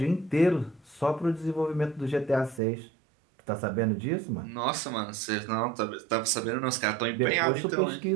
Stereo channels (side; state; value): left; drops out; at 2.6 s